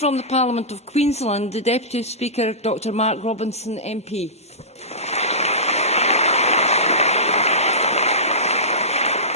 the Parliament of Queensland, the Deputy Speaker, Dr Mark Robinson, MP.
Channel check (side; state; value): both; normal; correlation -0.19